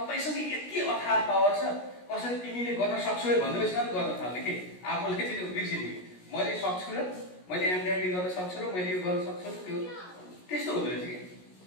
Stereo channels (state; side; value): late; right; 17 ms